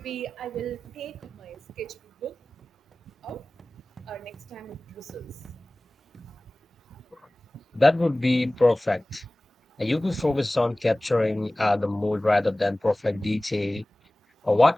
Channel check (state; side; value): normal; both; correlation 0.98